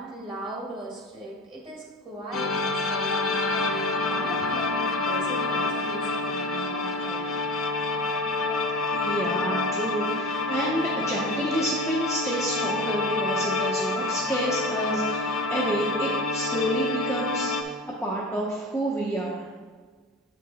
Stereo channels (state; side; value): normal; both; correlation 0.32